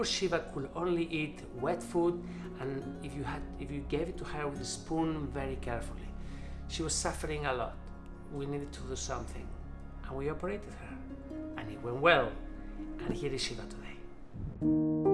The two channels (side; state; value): both; identical; correlation 1.00